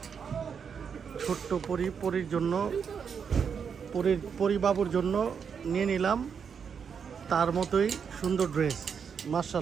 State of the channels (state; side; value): quieter; left; 6.8 dB